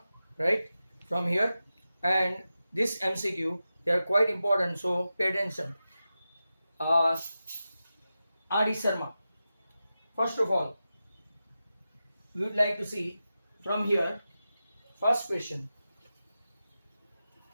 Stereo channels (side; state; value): both; inverted; correlation -0.92